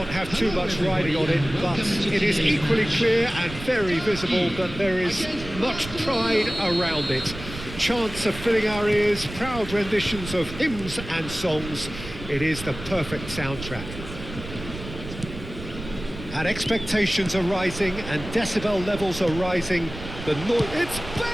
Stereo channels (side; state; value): right; noise; rumble, 12 dB below the sound